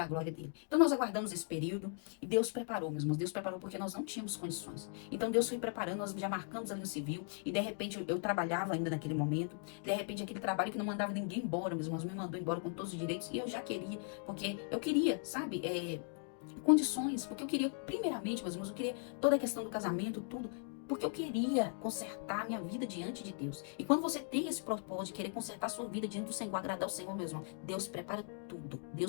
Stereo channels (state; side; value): silent; right; 52 dB below the other